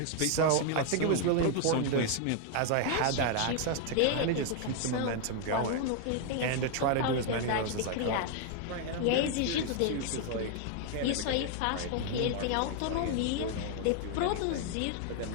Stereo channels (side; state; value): both; different; correlation 0.00